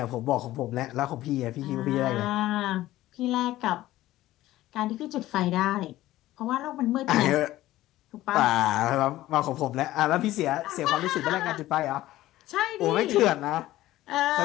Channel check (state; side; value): quieter; right; 15.6 dB